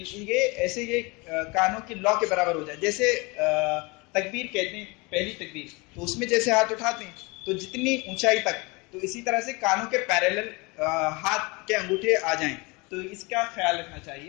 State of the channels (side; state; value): right; quieter; 26.7 dB